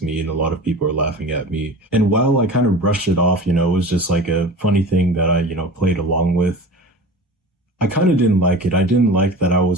me and a lot of people were laughing at me. And while I kind of brushed it off, it was just like a funny thing that I, played along with. I kind of didn't like it. I didn't like that I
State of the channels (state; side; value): normal; both; correlation 0.36